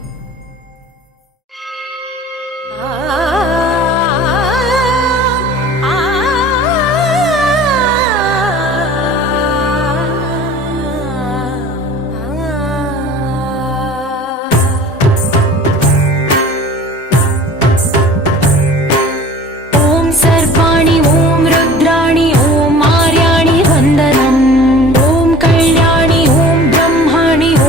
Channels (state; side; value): normal; both; correlation 0.44